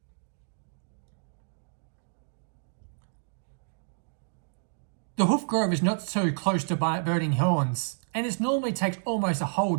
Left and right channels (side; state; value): left; silent; digital silence